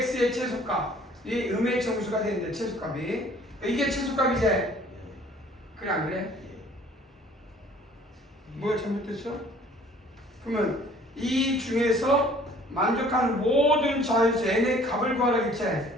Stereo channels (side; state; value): both; normal; correlation 0.54